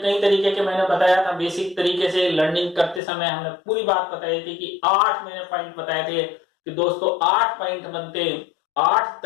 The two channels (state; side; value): drops out; right; at 3.0 s